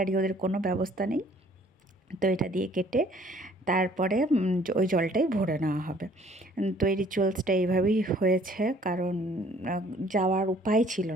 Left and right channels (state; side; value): normal; both; correlation 0.58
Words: ওদের কোনো ব্যবস্থা নেই, তো এটা দিয়ে কেটে তারপরে ওই জলটাই ভরে নেওয়া হবে। তো এই রিচুয়ালসটা এইভাবেই হয়েছে, কারণ যাওয়ার উপায় ছিল